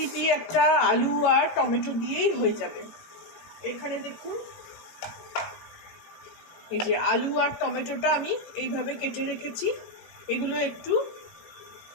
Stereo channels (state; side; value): late; right; 18 ms